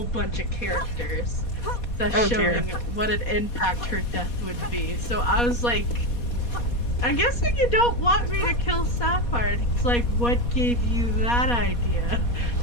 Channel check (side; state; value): right; late; 4.2 ms